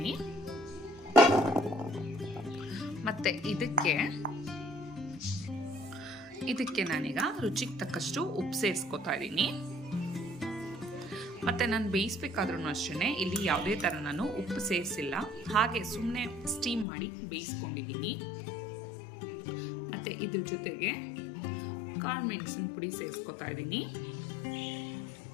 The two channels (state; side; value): drops out; right; at 16.9 s